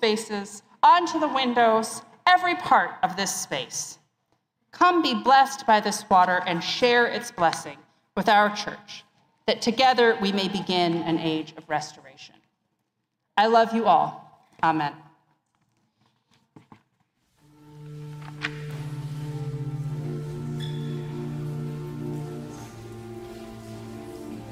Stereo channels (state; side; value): identical; both; correlation 1.00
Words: onto the windows, every part of this space. Come be blessed by this water and share its blessing with our church, that together we may begin an age of restoration. I love you all. Amen.